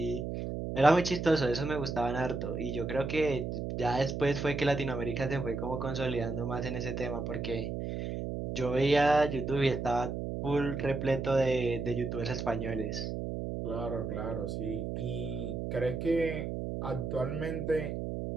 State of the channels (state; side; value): noise; right; hum, 4 dB below the sound